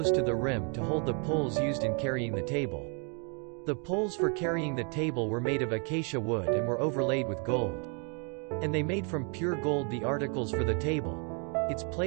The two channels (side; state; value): left; quieter; 38.4 dB